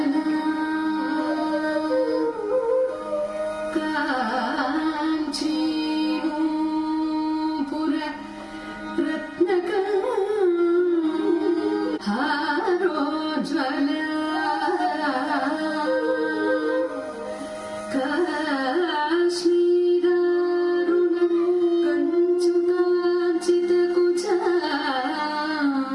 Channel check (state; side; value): identical; both; correlation 1.00